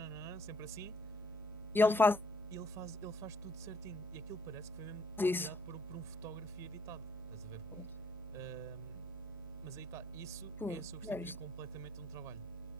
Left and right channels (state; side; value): noise; left; hum, 24 dB below the sound